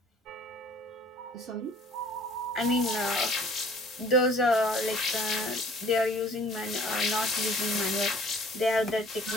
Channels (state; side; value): normal; both; correlation 0.54